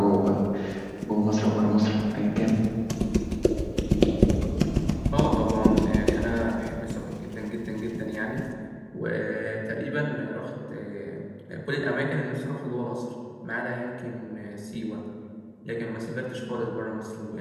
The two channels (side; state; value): both; identical; correlation 1.00